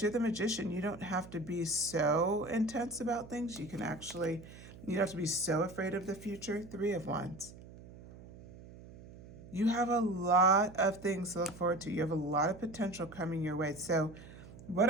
you're the Magician. You don't have to be so intense about things. You don't have to be so afraid of the future. 3 of Wands. You have a lot of things to look forward to. You have a lot of potential coming your way. So what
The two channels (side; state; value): right; noise; hum, 17 dB below the sound